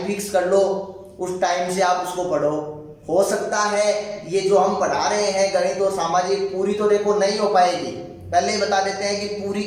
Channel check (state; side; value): identical; both; correlation 1.00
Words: फिक्स कर लो, उस टाइम से आप उसको पढ़ो। हो सकता है ये जो हम पढ़ा रहे हैं गणित और सामाजिक, पूरी तो देखो नहीं हो पाएगी, पहले ही बता देते हैं कि पूरी